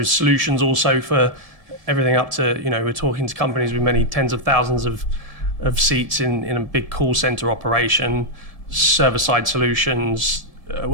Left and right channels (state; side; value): late; left; 1.8 ms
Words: solutions also for everything up to we're talking to companies with many tens of thousands of seats in a big call center operation, server-side solutions,